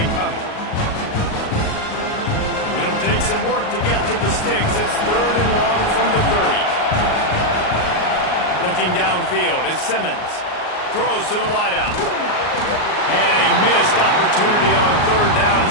coming. It'll take some work to get to the sticks. It's 3rd and long from the 30. Looking downfield is Simmons. Throws to the wideout. And a missed opportunity on 3rd down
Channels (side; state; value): right; late; 38 ms